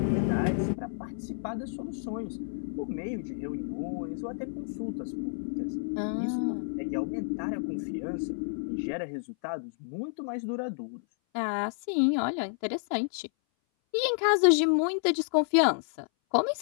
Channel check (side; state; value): right; silent; 58 dB below the other